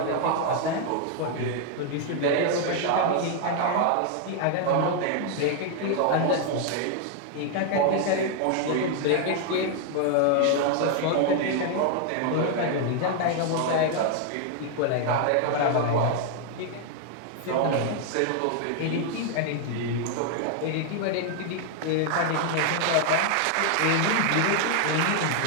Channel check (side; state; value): both; different; correlation 0.00